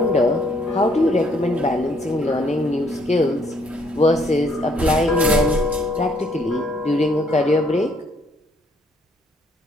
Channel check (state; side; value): normal; both; correlation 0.66